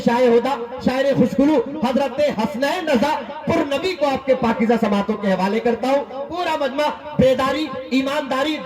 होदा शायर खुशगुलू हजरत हसनैन रजा पुरनबी को आपके पाकीज़ा समातों के हवाले करता हूँ। पूरा मजमा बेदारी, ईमानदारी,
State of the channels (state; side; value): identical; both; correlation 1.00